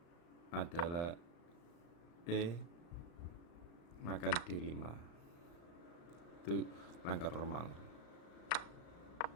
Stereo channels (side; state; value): right; late; 35 ms